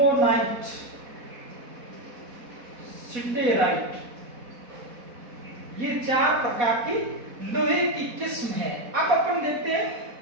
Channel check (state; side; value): late; left; 4.1 ms